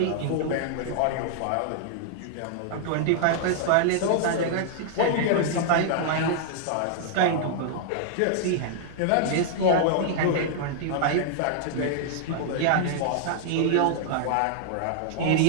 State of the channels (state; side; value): different; both; correlation -0.01